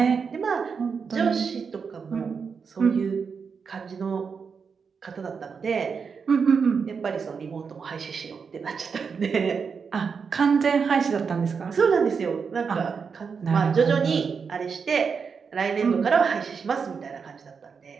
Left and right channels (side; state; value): left; quieter; 5.8 dB